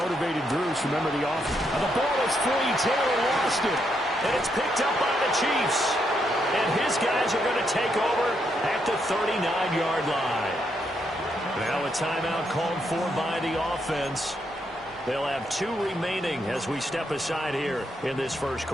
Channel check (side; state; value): both; normal; correlation 0.78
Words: groups. Remember the offense. And the ball is free. Taylor lost it. And it's picked up by the Chiefs. And his guys are going to take over at the 39-yard line. Now a timeout called for by the offense. They'll have 2 remaining as we step aside here in this first